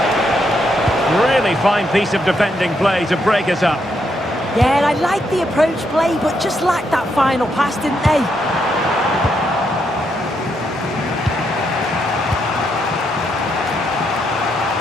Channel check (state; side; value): normal; both; correlation 0.78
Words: Really fine piece of defending play to break it up. Yeah, and I like the approach play, but just lacked that final pass, didn't they?